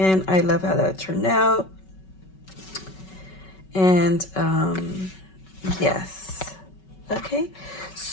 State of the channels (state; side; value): late; right; 5.3 ms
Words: I love how that turned out. And yes, okay,